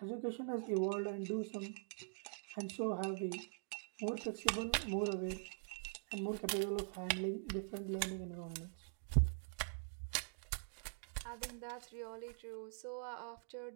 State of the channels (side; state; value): left; silent; digital silence